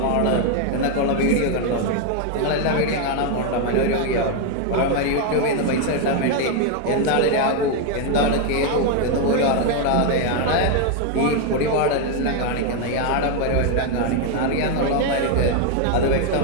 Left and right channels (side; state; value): both; different; correlation 0.01